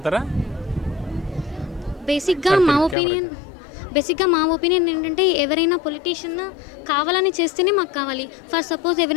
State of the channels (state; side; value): drops out; right; at 3.0 s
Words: బేసిక్గా మా ఒపీనియన్ ఏంటంటే ఎవరైనా పొలిటీషియన్ కావాలని చేస్తేనే మాకు కావాలి. ఫర్ సపోజ్